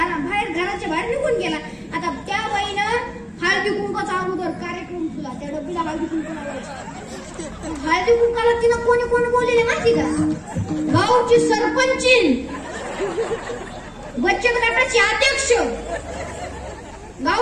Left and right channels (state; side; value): identical; both; correlation 1.00